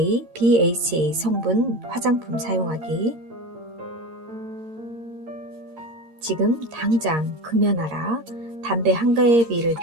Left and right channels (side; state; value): left; late; 8.8 ms